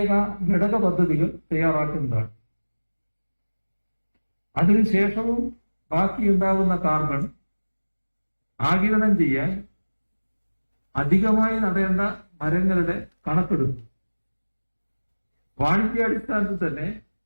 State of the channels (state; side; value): inverted; both; correlation -1.00